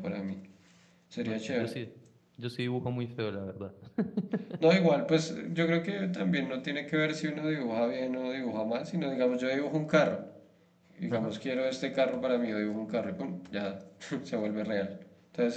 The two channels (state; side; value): identical; both; correlation 1.00